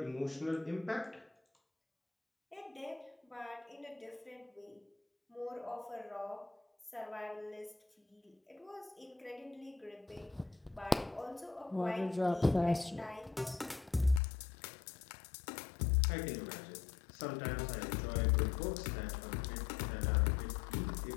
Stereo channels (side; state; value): right; drops out; at 14.2 s